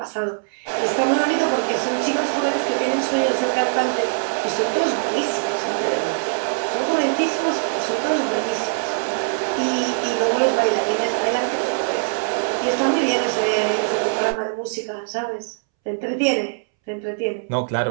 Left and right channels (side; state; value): left; silent; 64 dB below the other